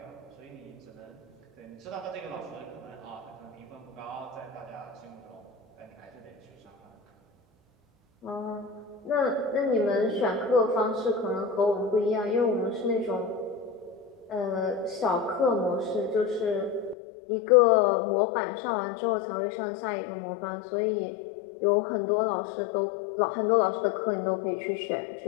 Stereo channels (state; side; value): drops out; right; at 16.9 s